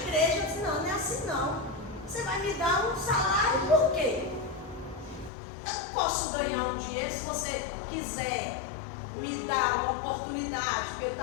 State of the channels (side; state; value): right; drops out; at 5.3 s